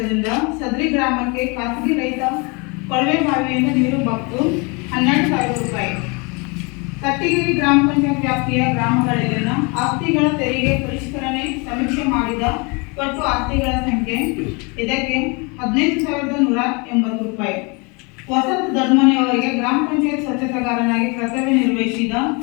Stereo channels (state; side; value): quieter; right; 30.2 dB